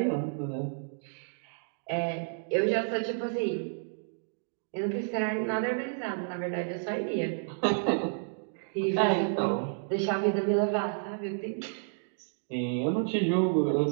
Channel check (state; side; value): silent; left; digital silence